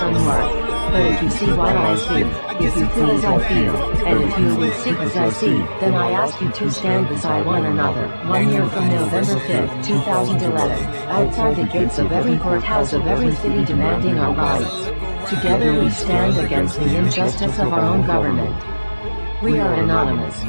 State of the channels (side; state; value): both; inverted; correlation -1.00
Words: unmarked. But if you see what I see, if you feel as I feel, and if you will see as I see, then I ask you to stand beside one another. 1 year from November 5th, 2011, outside the gates of every courthouse of every city demanding our rights. Together we stand against the injustice of our own government. We are anonymous.